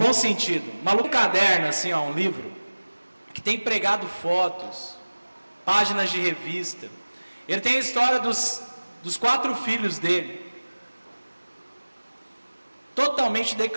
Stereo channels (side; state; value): both; inverted; correlation -1.00